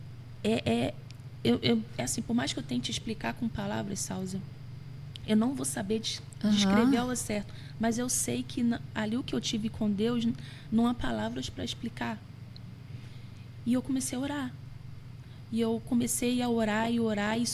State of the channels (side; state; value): both; identical; correlation 1.00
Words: É assim, por mais que eu tente explicar com palavras, Salzi, eu não vou saber descrever ao certo. Mas eu sei que ali o que eu tive com Deus, não há palavras para explicar. E eu comecei a orar. E eu comecei a orar e